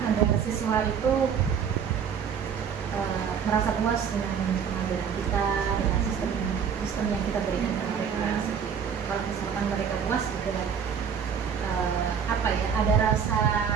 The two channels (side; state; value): left; quieter; 7.2 dB